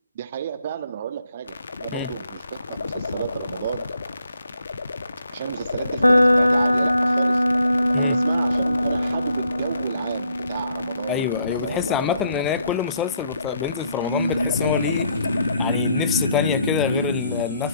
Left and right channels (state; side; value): inverted; both; correlation -0.69